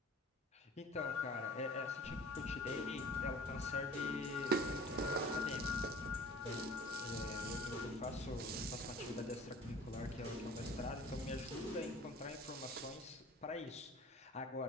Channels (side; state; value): both; normal; correlation 0.46